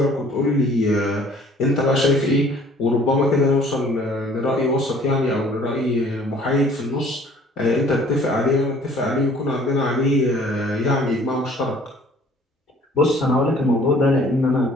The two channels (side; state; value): both; normal; correlation 0.54